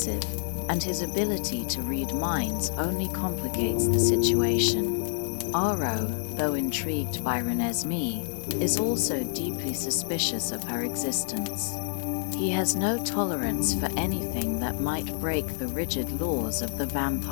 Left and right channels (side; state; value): right; silent; digital silence